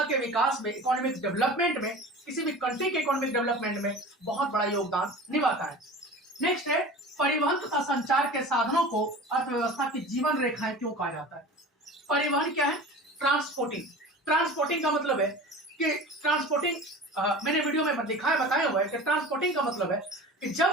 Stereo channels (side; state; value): both; normal; correlation 0.36